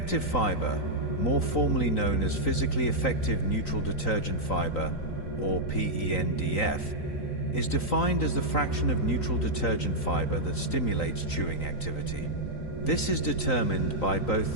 fiber, more formally known as physically effective neutral detergent fiber, or PENDF, is defined as the fraction of neutral detergent fiber that stimulates chewing activity. This is determined by both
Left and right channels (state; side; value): late; right; 3.9 ms